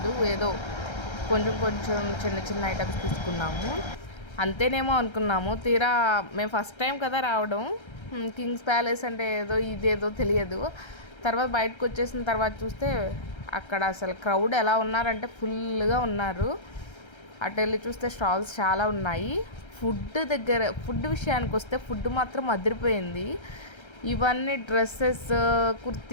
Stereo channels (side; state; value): right; late; 1.3 ms